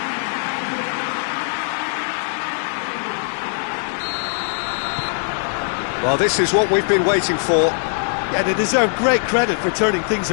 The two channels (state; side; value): silent; right; digital silence